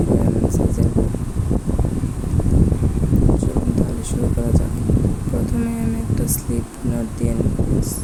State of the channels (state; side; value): identical; both; correlation 1.00